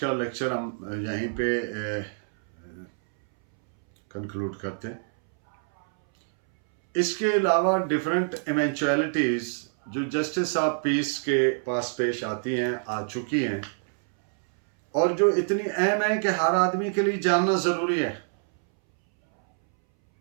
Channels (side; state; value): left; silent; 61 dB below the other